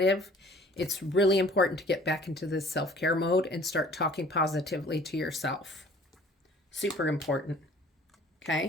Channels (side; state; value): both; normal; correlation 0.52